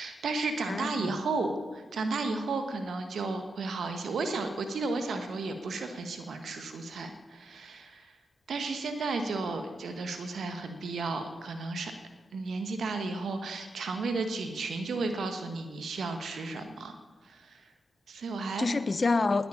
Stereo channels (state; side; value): normal; both; correlation 0.84